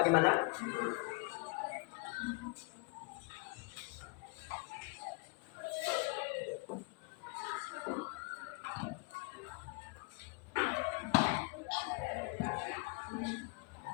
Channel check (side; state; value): right; quieter; 30.8 dB